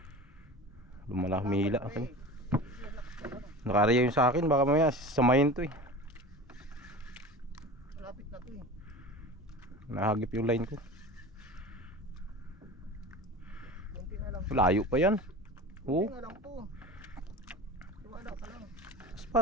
Lumala, humihila akin. Nakariya yung sa akin, baka mamaya samayin to eh. Malapit na to eh. Nahagip yung line ko. Kunti na lang. Layo pa yan. Oo. Kunti na lang to. Wala pa lang.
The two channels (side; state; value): both; normal; correlation 0.34